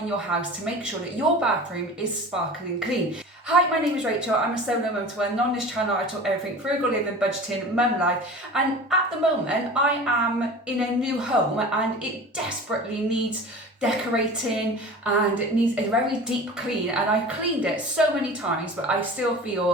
your house to make sure that your bathroom is sparkling clean. Hi, my name is Rachel. I'm a solo mum to one, and on this channel I talk everything frugal living, budgeting, mum life, and at the moment I am in a new home and it desperately needs decorating and it needs a very deep clean, and I've cleaned it so many times but I still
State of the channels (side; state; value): both; normal; correlation 0.37